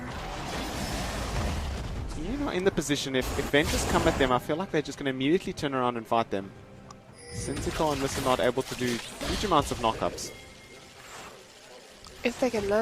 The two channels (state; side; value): identical; both; correlation 1.00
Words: Ian are in the position, if Ventus come at them, I feel like they're just going to immediately turn around and fight them. Syntico and Mr. not able to do huge amounts of knockups. If they can